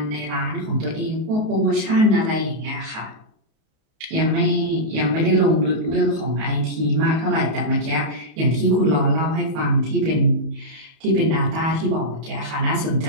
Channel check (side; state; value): left; late; 32 ms